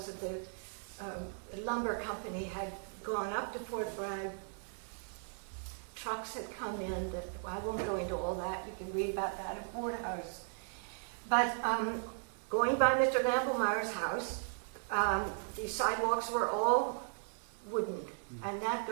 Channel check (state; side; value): silent; left; digital silence